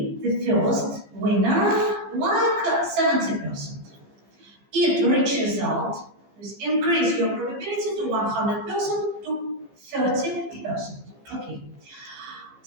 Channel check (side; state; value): left; late; 15 ms